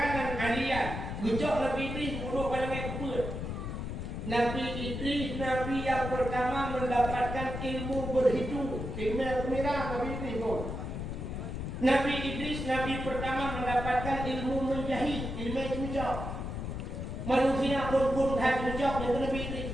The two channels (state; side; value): noise; left; rumble, 5 dB below the sound